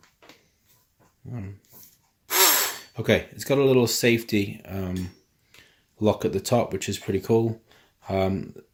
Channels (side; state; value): both; identical; correlation 1.00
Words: okay, it's got a little safety lock at the top, which is pretty cool.